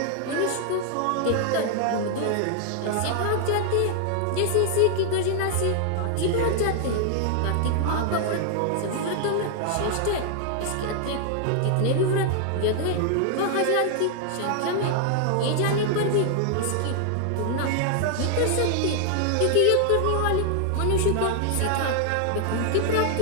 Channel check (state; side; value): different; both; correlation 0.00